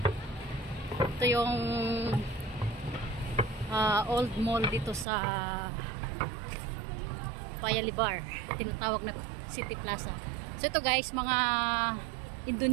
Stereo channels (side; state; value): left; drops out; at 5.1 s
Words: Ito yung old mall dito sa Paya-Lebar, tinatawag na City Plaza. So ito guys, mga